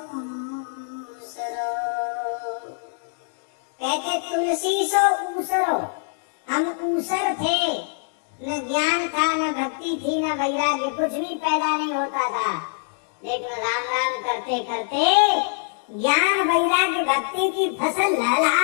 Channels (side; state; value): right; silent; digital silence